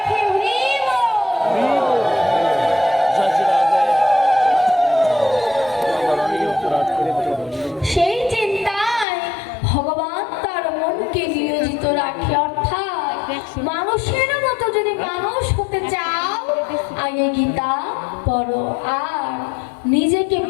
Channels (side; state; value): right; drops out; at 9.1 s